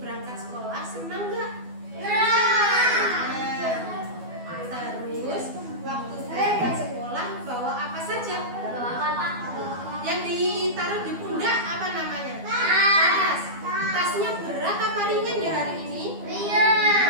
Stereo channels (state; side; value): late; left; 12 ms